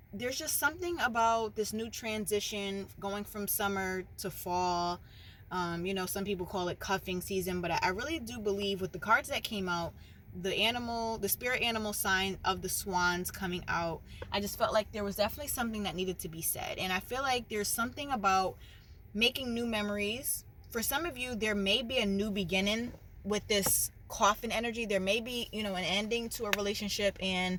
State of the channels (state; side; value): identical; both; correlation 1.00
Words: there's just something about this new transition going from summer to fall. Some people call it cuffing season, but I really do believe with the cards that came out, the spirit animal sign of the swans coming out, I just felt like there was definitely something that needed to be said. And I feel like there's something about making new memories. For some of you, there may be a new beginning with this coffin energy. There may be, an ending to a relationship and